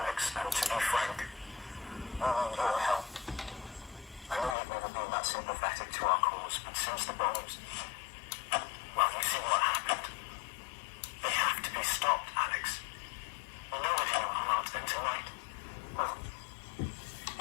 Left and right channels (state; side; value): drops out; right; at 4.5 s